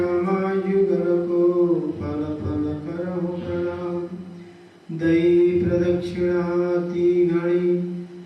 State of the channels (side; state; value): both; identical; correlation 1.00